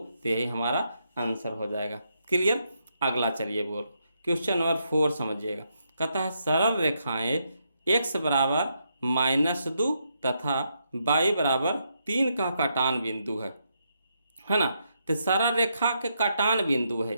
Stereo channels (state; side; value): inverted; both; correlation -0.79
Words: तो यही हमारा आंसर हो जाएगा। क्लियर। अगला चलिए बोल, क्वेश्चन नंबर 4 समझिएगा। कहता है सरल रेखाएं x बराबर -2 तथा y बराबर 3 का काटान बिंदु है ना। तो सरल रेखा के काटान बिंदु है